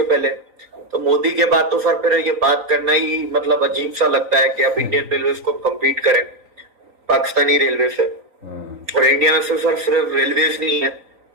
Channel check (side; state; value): left; late; 3.9 ms